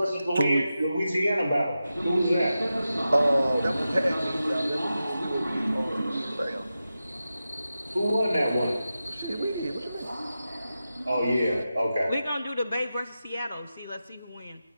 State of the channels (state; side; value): inverted; both; correlation -0.92